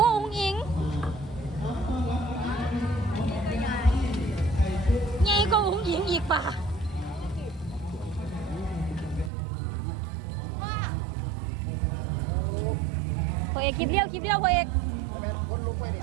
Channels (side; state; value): left; drops out; at 9.3 s